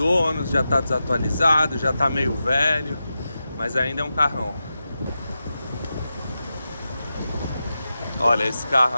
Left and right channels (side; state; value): both; inverted; correlation -0.91